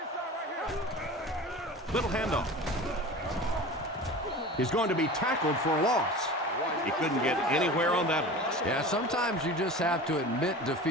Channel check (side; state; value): both; normal; correlation 0.35